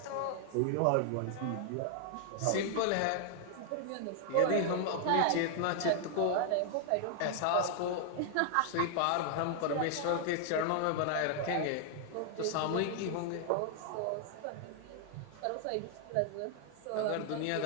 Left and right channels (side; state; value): both; different; correlation 0.00